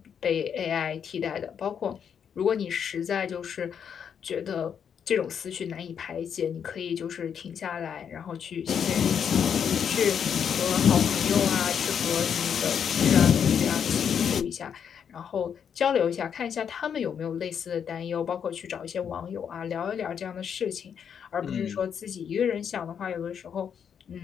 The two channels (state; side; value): quieter; right; 7.7 dB